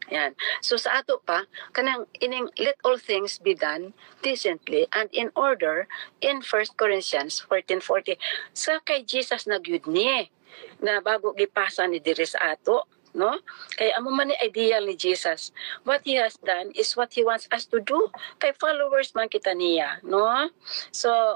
Yan. So sa ato pa kanang ining let all things be done decently and in order in 1 Corinthians 14:40 sa kay Jesus nagyud ni na bago gipasa ni diri sa ato no, kay amo man ni ideal ni Jesus, what He has done is what He wants us to do, kay followers man kita niya no.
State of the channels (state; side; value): silent; left; digital silence